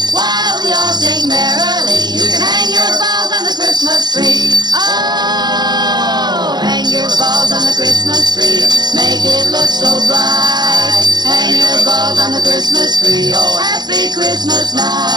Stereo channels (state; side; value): late; left; 0.21 ms